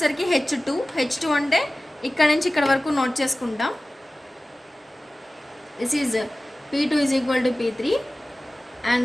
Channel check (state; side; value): normal; both; correlation 0.97